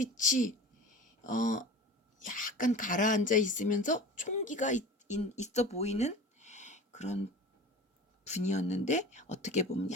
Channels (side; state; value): both; normal; correlation 0.36